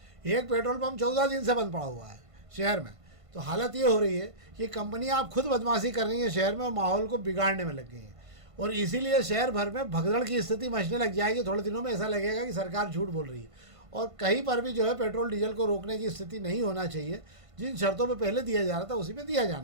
एक पेट्रोल पंप 14 दिन से बंद पड़ा हुआ है शहर में। तो हालत ये हो रही है कि कंपनियां आप खुद बदमाशी कर रही हैं शहर में और माहौल को बिगाड़ने में लग गई हैं, और इसीलिए शहर भर में भगदड़ की स्थिति मचने लग जाएगी। थोड़े दिनों में ऐसा लगेगा कि सरकार झूठ बोल रही है, और कहीं पर भी जो है पेट्रोल डीजल को रोकने की स्थिति नहीं होना चाहिए। जिन शर्तों पे पहले दिया जा रहा था उसी पे दिया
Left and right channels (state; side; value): late; left; 1.5 ms